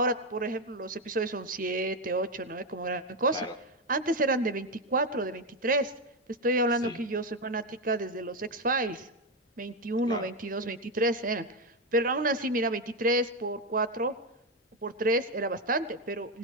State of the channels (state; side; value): normal; both; correlation 0.09